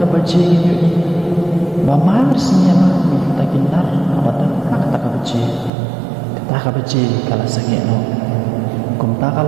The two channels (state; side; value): drops out; left; at 5.7 s